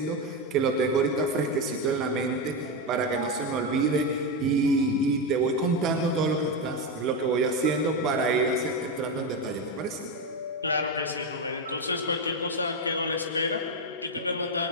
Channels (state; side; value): normal; both; correlation 0.10